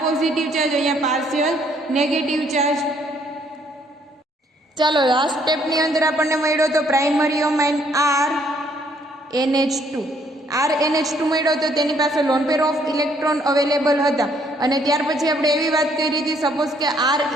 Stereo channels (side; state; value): both; normal; correlation 0.66